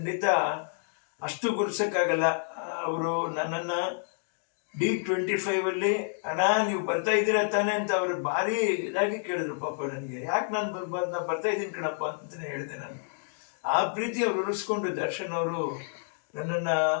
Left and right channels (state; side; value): silent; right; digital silence